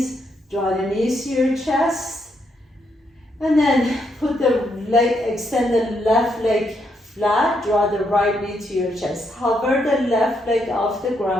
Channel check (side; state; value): both; normal; correlation 0.77